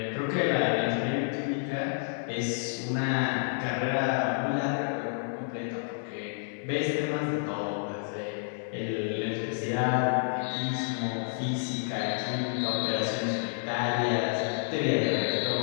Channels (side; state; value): right; silent; 58 dB below the other